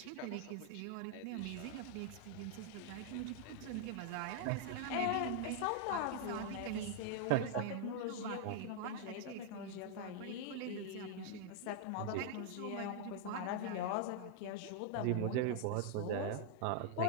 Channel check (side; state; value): both; different; correlation -0.01